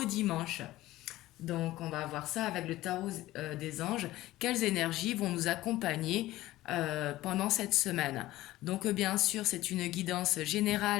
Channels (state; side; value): quieter; right; 16.5 dB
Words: dimanche. Donc on va voir ça avec le tarot des anges, quelles énergies vont nous accompagner pendant cette semaine. Donc bien sûr c'est une guidance